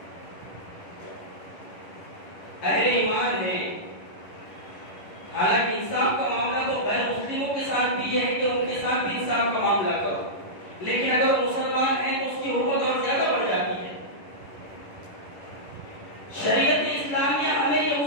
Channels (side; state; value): right; late; 11 ms